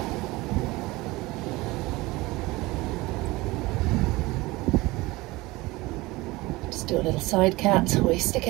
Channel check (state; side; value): quieter; left; 21.0 dB